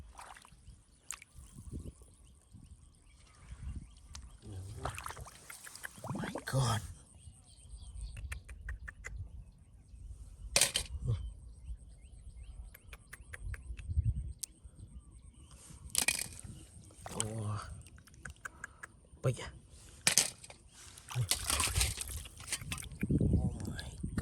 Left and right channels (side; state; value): both; identical; correlation 1.00